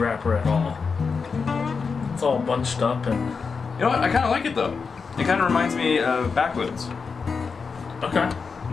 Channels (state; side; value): quieter; right; 5.2 dB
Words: at all. It's all bunched up and. You know what? I kind of like it though. It kind of reminds me of Backwoods. Okay.